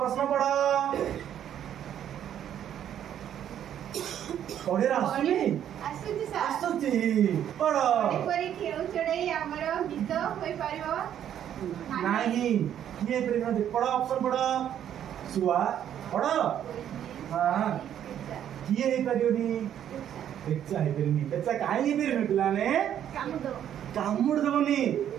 प्रश्न पढ़ पढ़े आसुनी ଆସୁଛି ସାର୍ आसुची पढ़ ଏପରି ଖେଳ ଚଢ଼େଇ ଆମର ଗୀତ ହୋଇପାରିବ नहीं ये प्रेम पढ़ ऑप्शन पढ़ सुआ पढ़ हाँ किए हे परियोनी बेचा हे परियोनी बेचा काहे हे परियोनी पिलाने କାମୁଡ कामुड़ देबनी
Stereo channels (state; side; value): quieter; left; 10.1 dB